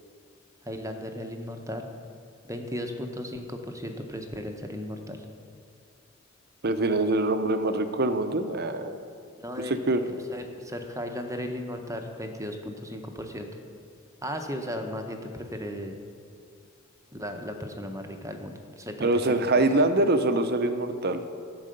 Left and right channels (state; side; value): normal; both; correlation 0.15